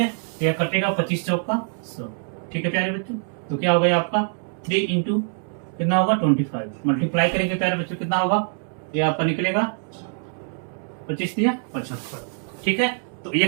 तो यह कटेगा 25 चौका 100। ठीक है प्यारे बच्चों, तो क्या हो गया आपका 3 इंटू कितना होगा 25, मल्टीप्लाई करेंगे प्यारे बच्चों कितना होगा, ये आपका निकलेगा 25 दिया 75। ठीक है, तो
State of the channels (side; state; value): left; silent; 56 dB below the other